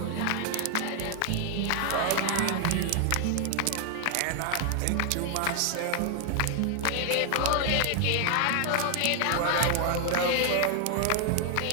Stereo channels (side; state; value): both; different; correlation 0.00